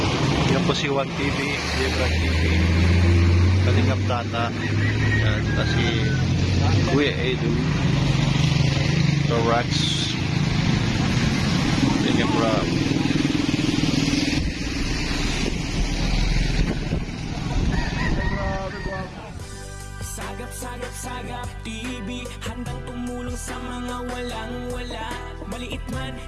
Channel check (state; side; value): identical; both; correlation 1.00